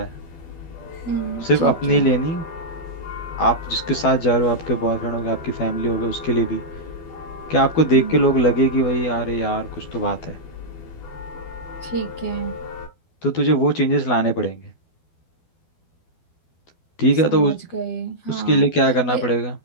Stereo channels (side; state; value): right; late; 12 ms